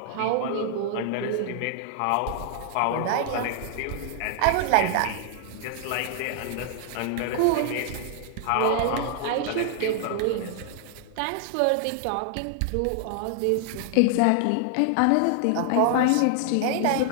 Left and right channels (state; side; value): different; both; correlation 0.00